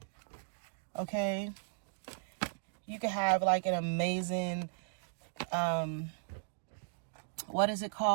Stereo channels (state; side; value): silent; left; digital silence